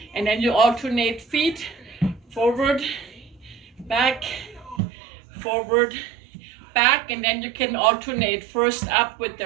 And then you alternate feet, forward, back, forward, back, and then you can alternate first up with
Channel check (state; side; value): drops out; left; at 4.8 s